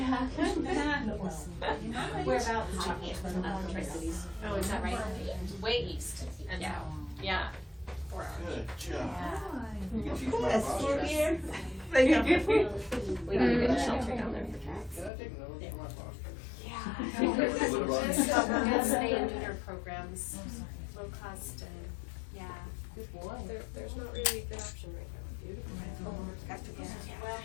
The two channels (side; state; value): right; drops out; at 15.1 s